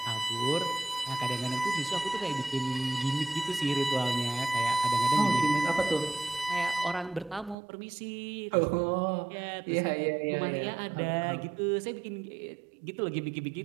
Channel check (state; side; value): drops out; left; at 7.6 s